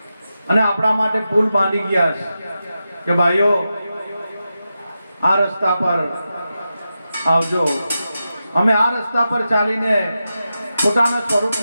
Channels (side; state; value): both; inverted; correlation -0.90